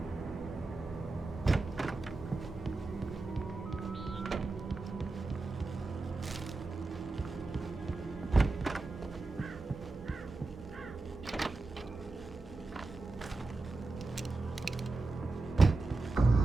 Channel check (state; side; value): quieter; left; 3.4 dB